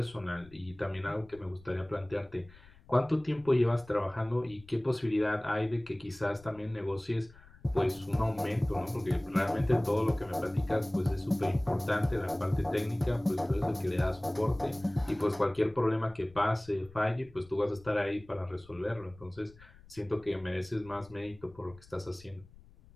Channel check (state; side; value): noise; left; rumble, 23 dB below the sound